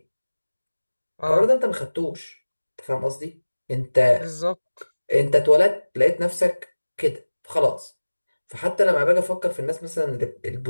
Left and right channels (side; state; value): both; inverted; correlation -1.00